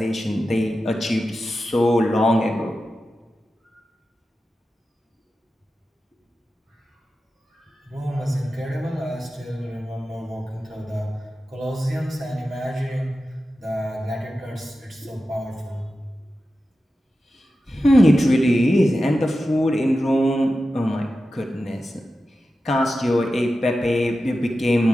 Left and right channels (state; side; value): normal; both; correlation 0.92